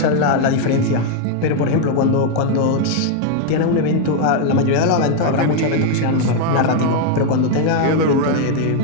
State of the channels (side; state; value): both; different; correlation 0.00